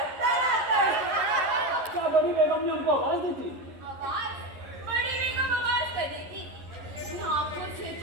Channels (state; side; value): late; left; 11 ms